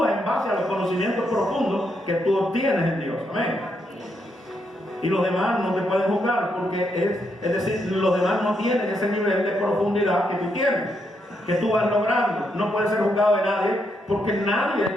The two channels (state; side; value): normal; both; correlation 0.79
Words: en base a los conocimientos profundos que tú obtienes en Dios. Amén. Y los demás no te pueden juzgar, porque es decir, los demás no tienen ese nivel de profundidad que tú tienes, que tú vas logrando. No puedes ser juzgado de nadie, porque nadie